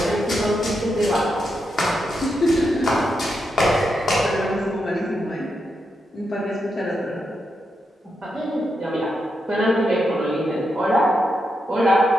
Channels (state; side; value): normal; both; correlation 0.84